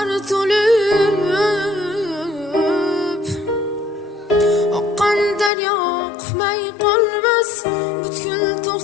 to'lib. Oqqan daryo oqmay qolmas, butkul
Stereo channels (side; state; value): right; drops out; at 5.5 s